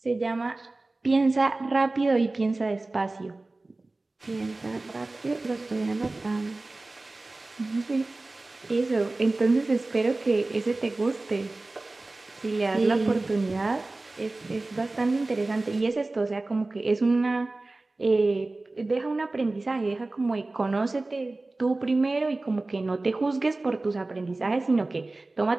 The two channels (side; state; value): left; quieter; 3.1 dB